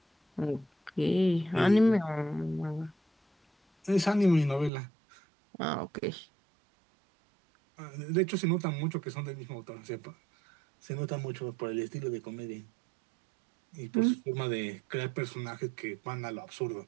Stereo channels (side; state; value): left; drops out; at 4.7 s